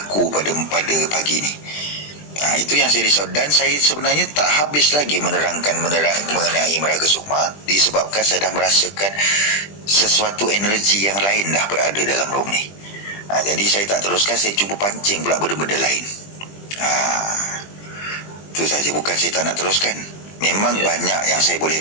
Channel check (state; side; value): late; right; 20 ms